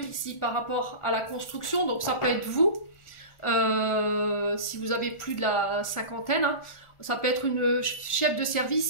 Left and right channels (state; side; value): late; right; 1.4 ms